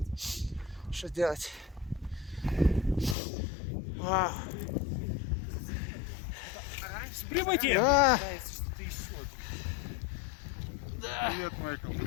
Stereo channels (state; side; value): drops out; right; at 3.2 s